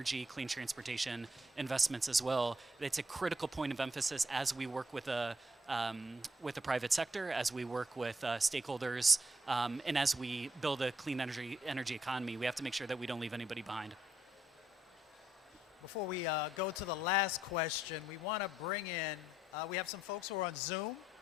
clean transportation investments as well, it's a critical point of emphasis as we work with the private sector, as we work with stakeholders, and as we build a clean energy economy. We have to make sure that we don't leave anybody behind. Before we go to the last question, we want to bring in, we have some folks who are on Zoom,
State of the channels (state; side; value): normal; both; correlation 0.73